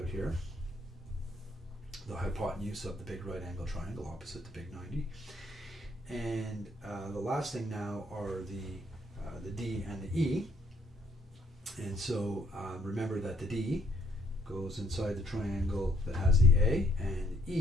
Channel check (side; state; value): both; normal; correlation 0.66